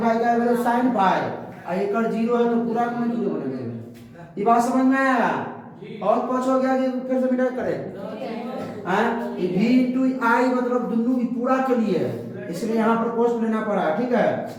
फाई का एवरेज साइन फाई, और एकड़ 0 है तो पूरा को नहीं 0 बनेगा। ये बात समझ में आया? और कुछ हो गया कि फिर से मिटा करें। हाँ ये v इंटू आई मतलब दोनों की पूरा के लिए है, इसलिए यहाँ पर कोष्ट लेना पड़ा, ठीक है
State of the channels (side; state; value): both; identical; correlation 1.00